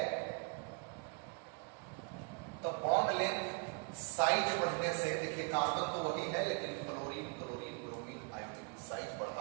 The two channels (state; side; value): quieter; left; 38.8 dB